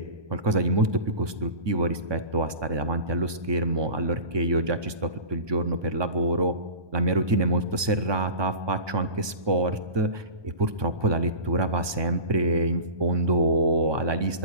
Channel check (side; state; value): left; late; 1.2 ms